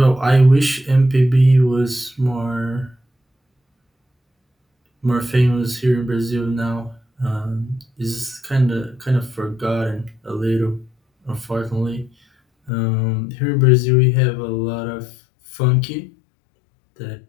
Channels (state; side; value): drops out; right; at 12.7 s